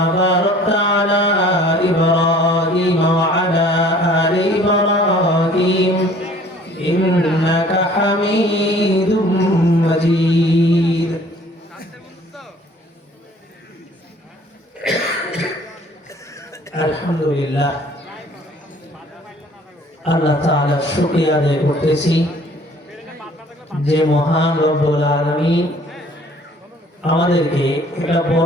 باركت على إبراهيم وعلى آل إبراهيم إنك حميد مجيد الحمد لله আল্লাহ তাআলার শুকরিয়া আদায় করতেছি যে মহান রব্বুল আলামিন আমাদেরকে একটা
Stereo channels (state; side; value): normal; both; correlation 0.54